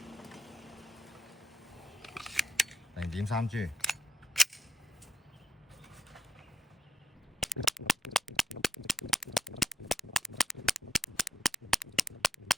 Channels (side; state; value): both; normal; correlation 0.72